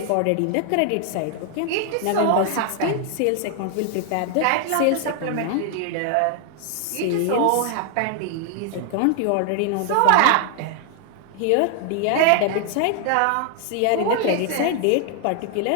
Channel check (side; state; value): both; different; correlation 0.00